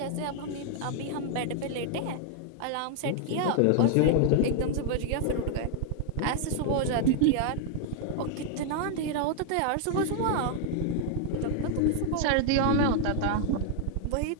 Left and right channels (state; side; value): different; both; correlation 0.00